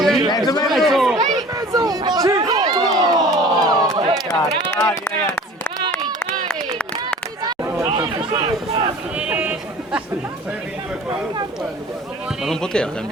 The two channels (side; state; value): both; normal; correlation 0.45